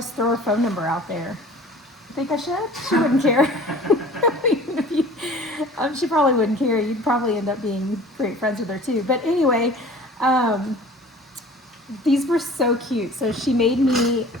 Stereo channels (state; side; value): normal; both; correlation 0.45